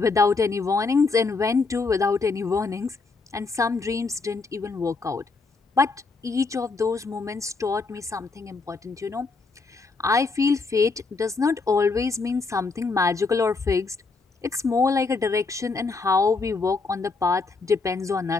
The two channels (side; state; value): right; quieter; 4.2 dB